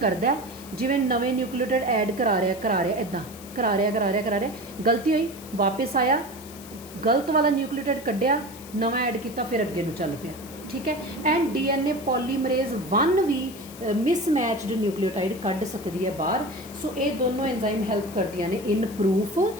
ਜਿਵੇਂ ਨਵੇਂ ਨਿਊਕਲੀਓਟਾਈਡ ਐਡ ਕਰਾ ਰਿਹਾ ਇੱਦਾਂ ਕਰਾ ਰਿਹਾ, ਗਲਤੀ ਹੋਈ, ਵਾਪਸ ਆਇਆ, ਗਲਤ ਵਾਲਾ ਨਿਊਕਲੀਓਟਾਈਡ ਕੱਢਿਆ, ਨਵਾਂ ਐਡ ਕੀਤਾ, ਫਿਰ ਅੱਗੇ ਨੂੰ ਚੱਲ ਪਿਆ, ठीक है। एंड DNA पॉलीमरेज 1 भी मिसमैचड न्यूक्लियोटाइड कढ़ सकती है बाहर। सो ये दोनों एंजाइम हैल्प करदियां ने इन प्रूफ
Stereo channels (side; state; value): left; noise; hiss, 17 dB below the sound